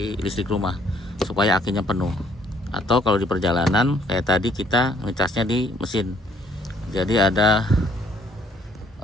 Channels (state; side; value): normal; both; correlation 0.63